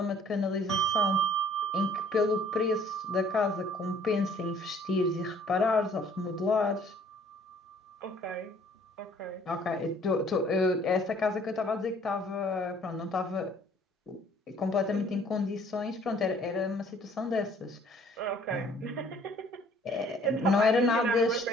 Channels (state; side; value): normal; both; correlation 0.57